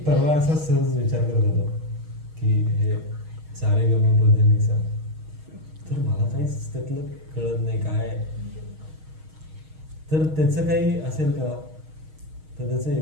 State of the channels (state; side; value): late; left; 6.4 ms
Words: परवा असा सहज विचार करत होतो की हे सारे गम पधनिसा, तर मला काहीच त्यातलं कळत नाही काय, तर त्याचं काही असेल का, तर त्याचं